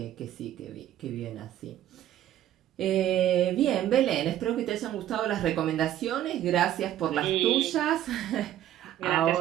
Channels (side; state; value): left; quieter; 12.2 dB